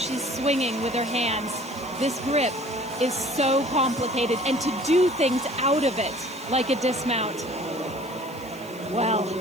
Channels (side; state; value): left; noise; hiss, 21 dB below the sound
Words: swinging with her hands. This grip is so complicated, and to do things out of it, like a dismount, well.